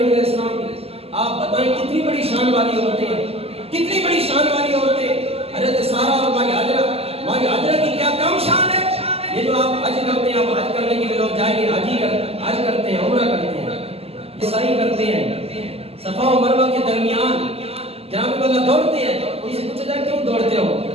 علیہ السلام کی. آپ بتائیں کتنی بڑی شان والی عورتیں ہیں، کتنی بڑی شان والی عورتیں. حضرت سارہ اور ہماری ہاجرہ کی کیا کم شان ہے. یہ جو آپ حج کرتے ہیں، آپ حج کرنے کے لیے لوگ جائیں گے، حج کرتے ہیں، عمرہ کرتے ہیں، سعی کرتے ہیں، صفا و مروہ کے درمیان جناب اللہ دوڑتے ہیں. ان سے پوچھا جائے کیوں دوڑتے ہو؟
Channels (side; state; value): left; late; 0.29 ms